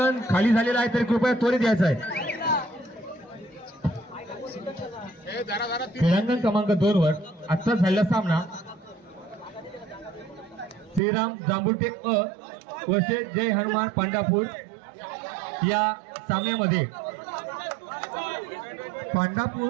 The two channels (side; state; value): left; drops out; at 11.0 s